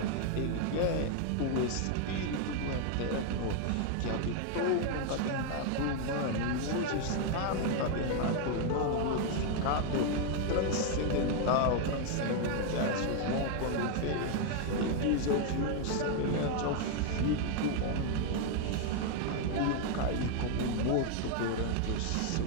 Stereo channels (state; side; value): different; both; correlation 0.00